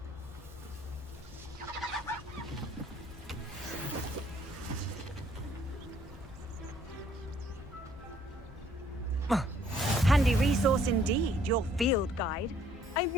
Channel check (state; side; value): normal; both; correlation 0.63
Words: Handy resource indeed, your field guide.